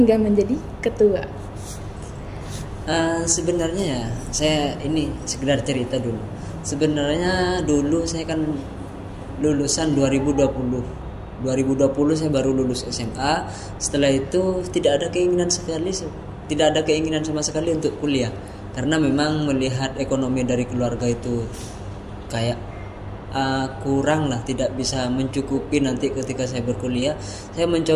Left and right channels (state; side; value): identical; both; correlation 1.00